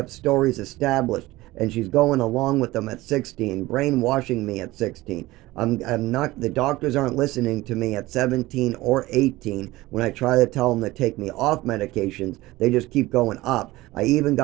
stories established, and she's going along with them at 16, brainwashing me at 16. I'm not, the doctors aren't listening to me at 17 or 18 when I try to tell them to take me off medications. They just keep going up. I even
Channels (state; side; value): quieter; left; 18.7 dB